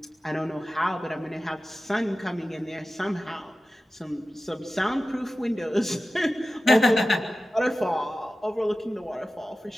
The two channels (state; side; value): normal; both; correlation 0.95